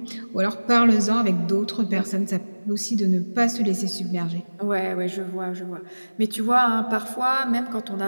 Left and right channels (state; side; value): inverted; both; correlation -1.00